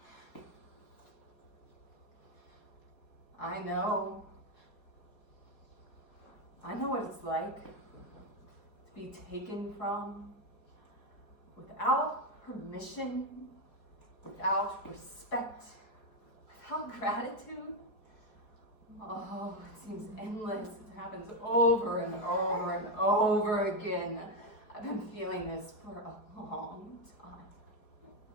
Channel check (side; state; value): right; late; 4.7 ms